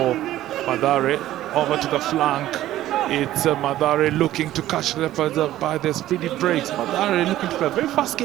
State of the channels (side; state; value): left; quieter; 14.0 dB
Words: Mathare. Over to the flank. It's Mathare looking to catch Leopards by their speedy breaks. Mathare looking to play a very fast